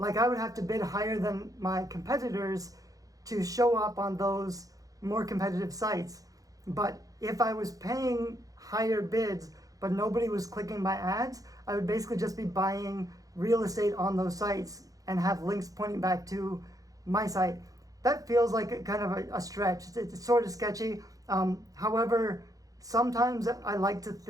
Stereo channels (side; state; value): left; late; 0.17 ms